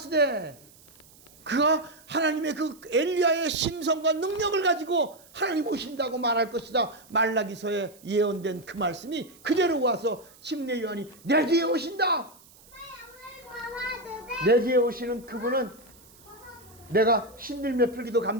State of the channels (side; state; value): right; noise; hiss, 25 dB below the sound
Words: 그가 하나님의 그 엘리야의 심성과 능력을 가지고 하나님 오신다고 말할 것이다. 말라기서에 예언된 그 말씀이 그대로 와서 침례 요한이 내 뒤에 오신다. 내 뒤에 오시는 그분은 내가 신들며 풀기도